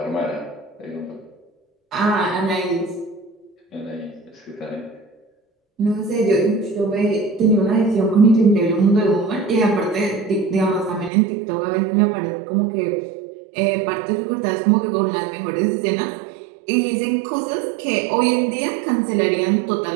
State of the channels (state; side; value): drops out; left; at 11.1 s